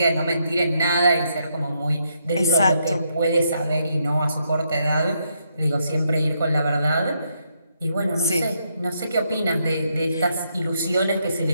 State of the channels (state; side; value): inverted; both; correlation -0.77